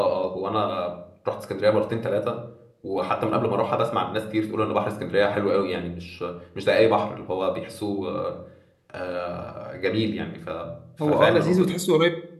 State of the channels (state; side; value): identical; both; correlation 1.00